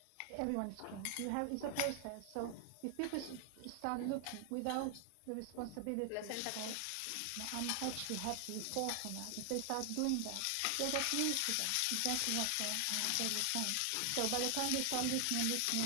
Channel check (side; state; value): both; different; correlation 0.00